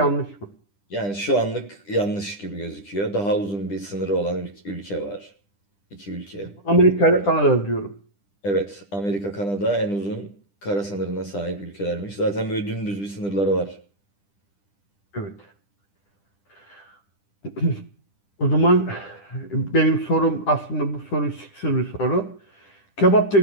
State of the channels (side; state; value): right; late; 10 ms